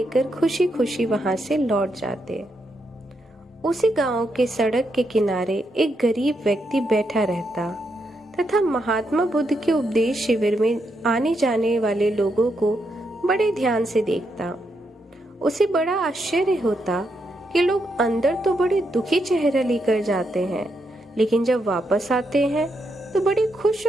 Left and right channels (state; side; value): normal; both; correlation 0.81